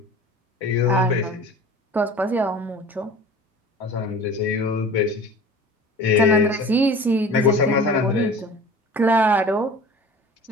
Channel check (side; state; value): both; normal; correlation 0.41